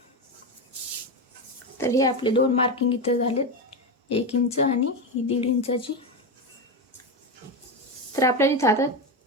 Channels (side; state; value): both; normal; correlation 0.14